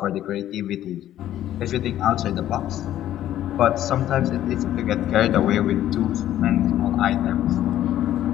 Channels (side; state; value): right; quieter; 12.4 dB